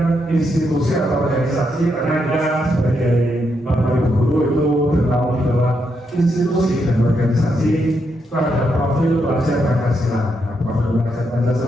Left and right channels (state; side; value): normal; both; correlation 0.80